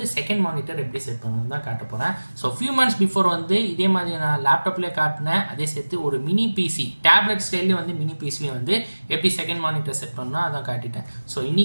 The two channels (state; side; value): inverted; both; correlation -1.00